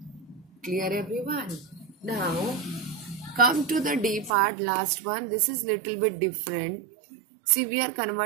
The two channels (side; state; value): left; drops out; at 4.3 s